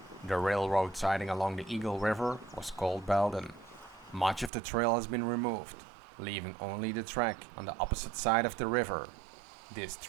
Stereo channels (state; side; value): drops out; left; at 4.5 s